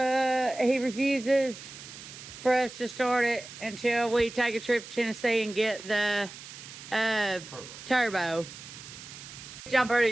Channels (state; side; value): noise; right; hiss, 14 dB below the sound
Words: for us to start it until we take a trip to Tennessee and get the turbo. Which I'm pretty